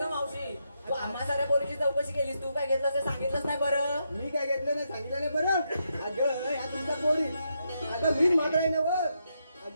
मावशी तू आम्हा साऱ्या पोरीची चौकशी केलीस, तू काय घेतलं ते सांगितलंच नाही बरं. मी काय घेतलं नाही सांगितलं नाही बरं अगं ह्या तुमच्या पोरी अगं मीच मात्र आहे ना बघ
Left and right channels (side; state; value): both; inverted; correlation -0.81